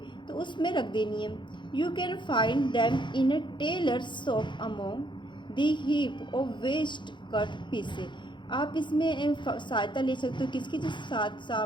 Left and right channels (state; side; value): late; right; 0.23 ms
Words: तो उसमें रख देनी है। You can find them in a tailor shop among the heap of waste cut pieces. आप इसमें सहायता ले सकते हो किसकी, जो साथ